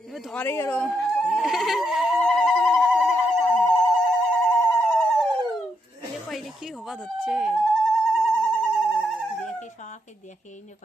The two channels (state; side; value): normal; both; correlation 0.79